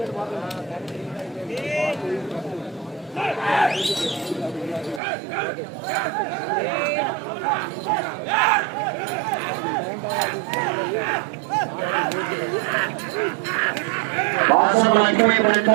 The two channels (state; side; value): drops out; left; at 5.0 s